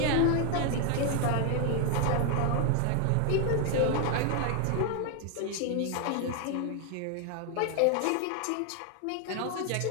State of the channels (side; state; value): both; different; correlation 0.00